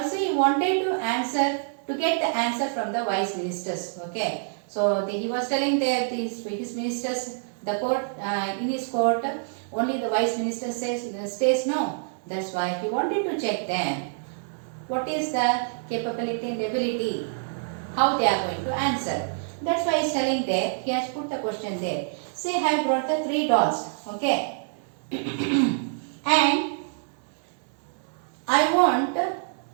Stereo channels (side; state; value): left; silent; 59 dB below the other